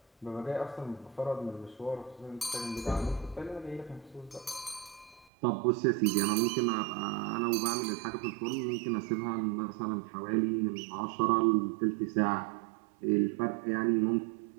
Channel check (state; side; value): drops out; left; at 5.3 s